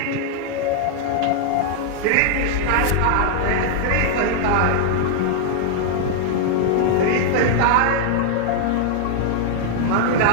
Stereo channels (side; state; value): both; different; correlation 0.00